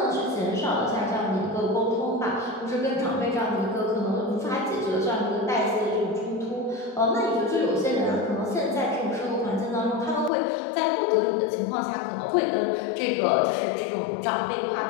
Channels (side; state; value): right; drops out; at 10.3 s